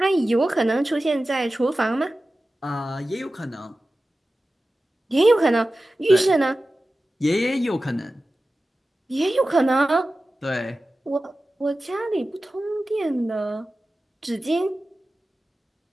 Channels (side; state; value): both; normal; correlation 0.95